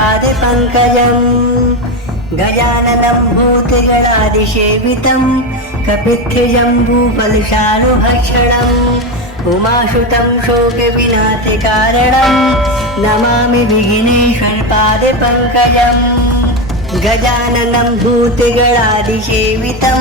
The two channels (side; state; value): both; normal; correlation 0.14